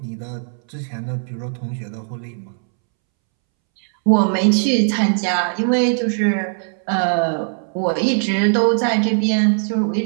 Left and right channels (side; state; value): left; silent; 65 dB below the other